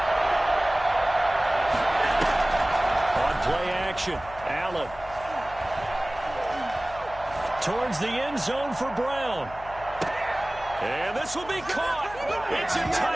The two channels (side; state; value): left; noise; hum, 17 dB below the sound